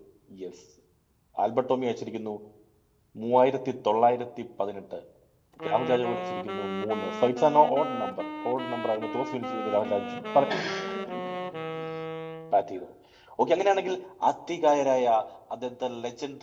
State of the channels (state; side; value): identical; both; correlation 1.00